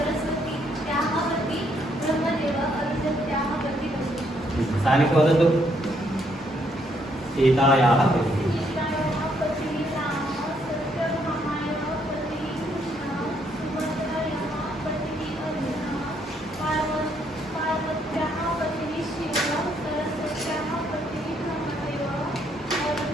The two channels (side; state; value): both; normal; correlation 0.72